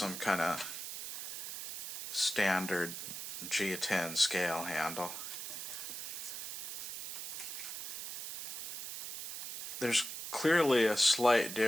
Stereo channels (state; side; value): noise; right; hiss, 6 dB below the sound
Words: kind of standard G10 scale handle. There's clearly a slight